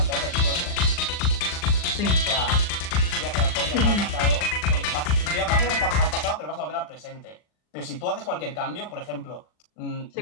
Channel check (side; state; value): right; late; 39 ms